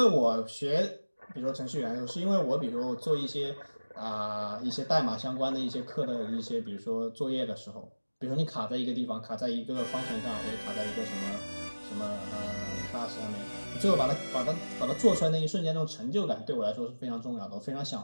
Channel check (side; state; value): both; inverted; correlation -1.00